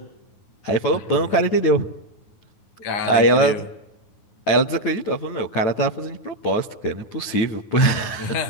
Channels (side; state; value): right; late; 9.1 ms